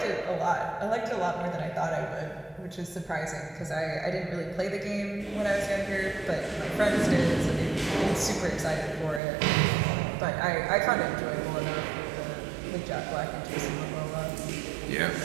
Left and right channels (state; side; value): drops out; left; at 9.2 s